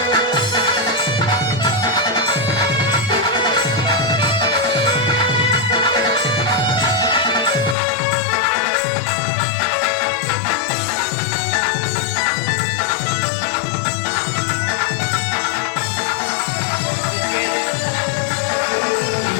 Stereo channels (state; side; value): drops out; right; at 7.8 s